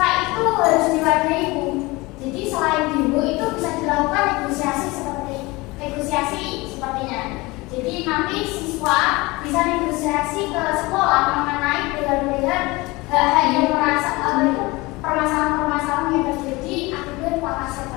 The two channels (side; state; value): right; quieter; 22.8 dB